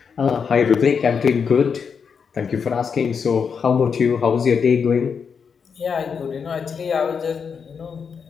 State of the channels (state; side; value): quieter; right; 6.3 dB